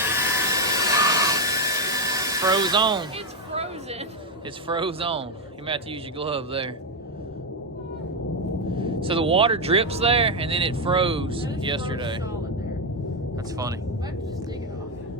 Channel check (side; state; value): both; normal; correlation 0.05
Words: Froze on. It's frozen. It's froze on. You might have to use your glove there. So the water drips there, and then it froze And it's yesterday. solid there. That's funny. I have to just dig it off.